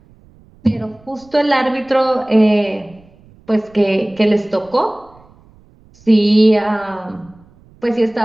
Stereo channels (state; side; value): noise; right; rumble, 28 dB below the sound